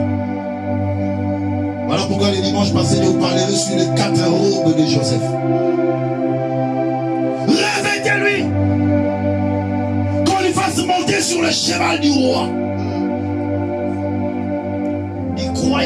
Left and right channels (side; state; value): both; identical; correlation 1.00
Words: Voilà pourquoi le dimanche passé, je vous parlerai sur les 4 robes de Joseph. Revêtez-lui. Qu'on lui fasse monter sur le cheval du roi. Il